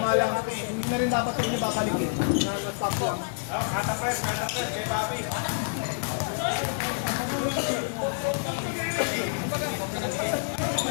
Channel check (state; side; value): silent; right; 58 dB below the other